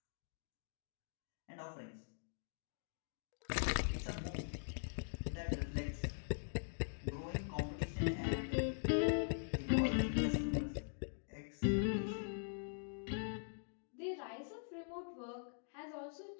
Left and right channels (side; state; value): right; silent; digital silence